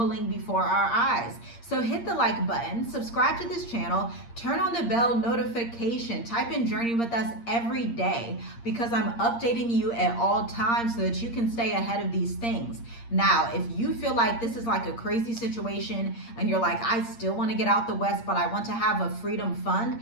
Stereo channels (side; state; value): right; late; 8.6 ms